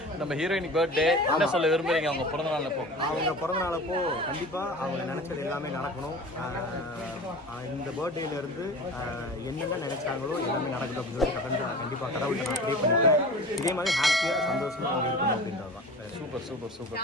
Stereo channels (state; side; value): normal; both; correlation 0.37